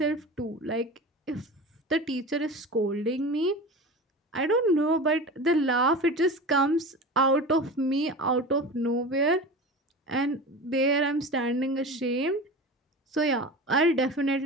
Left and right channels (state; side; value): normal; both; correlation 0.31